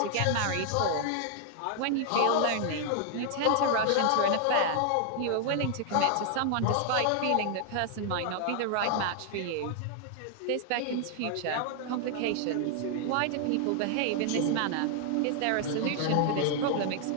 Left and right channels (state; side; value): different; both; correlation 0.00